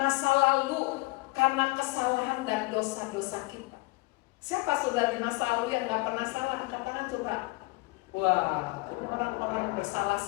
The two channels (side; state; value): right; quieter; 24.2 dB